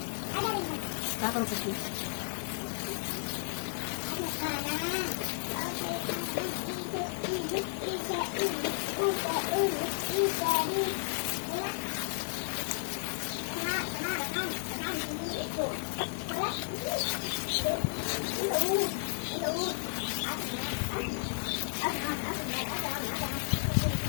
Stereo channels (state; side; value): silent; right; digital silence